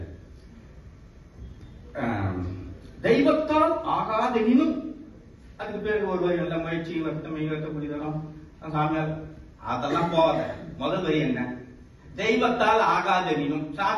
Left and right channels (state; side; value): identical; both; correlation 1.00